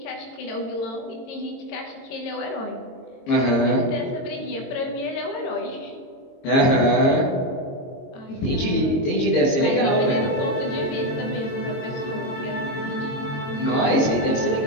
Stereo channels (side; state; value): right; late; 22 ms